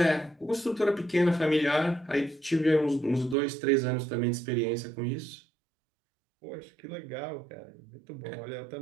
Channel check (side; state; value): left; drops out; at 3.4 s